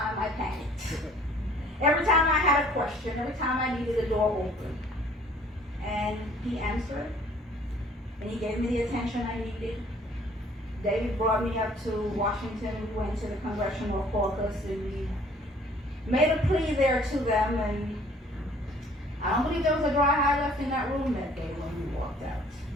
I panicked. Every time I had a question, every time I needed a door open. And he answered, and he gave me the attention I needed. David brought me up to Washington. We went to the Congressional Caucus, and we made a plea there to them, and I don't believe there was a dry eye left in that room that day when we walked out.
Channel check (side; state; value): both; normal; correlation 0.56